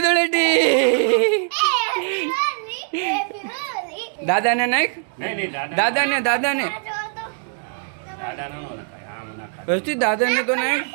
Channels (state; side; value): silent; left; 60 dB below the other